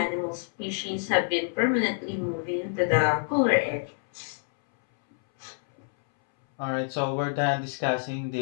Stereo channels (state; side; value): silent; right; 60 dB below the other